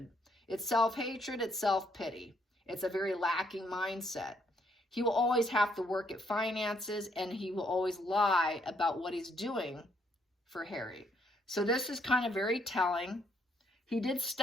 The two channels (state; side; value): normal; both; correlation 0.71